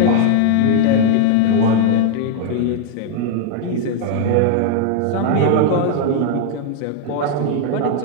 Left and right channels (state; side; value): different; both; correlation 0.00